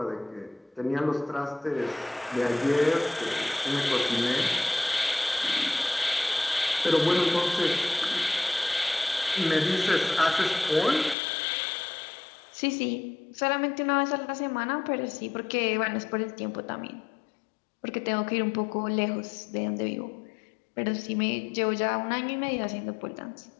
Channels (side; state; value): right; drops out; at 11.2 s